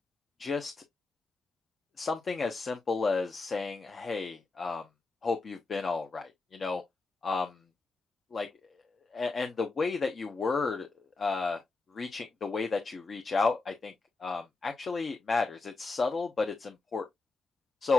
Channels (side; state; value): right; quieter; 3.8 dB